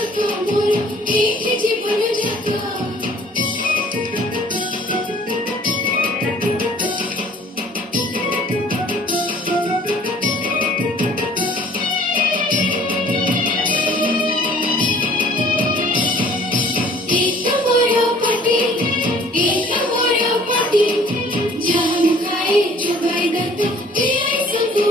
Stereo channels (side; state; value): both; normal; correlation 0.53